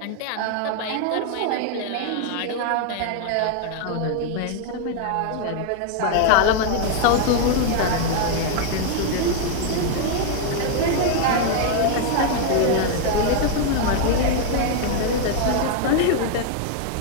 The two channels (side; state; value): both; different; correlation 0.00